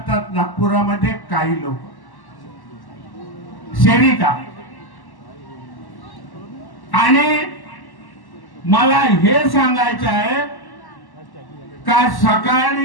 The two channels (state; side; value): late; right; 1.1 ms